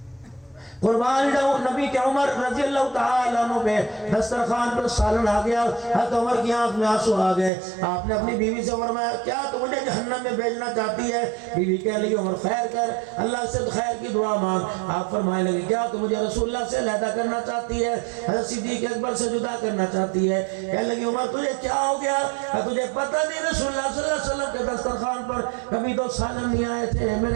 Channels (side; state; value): left; drops out; at 7.5 s